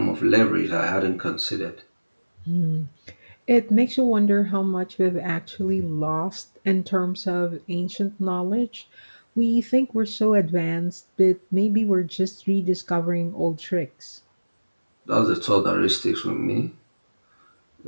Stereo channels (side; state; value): both; inverted; correlation -1.00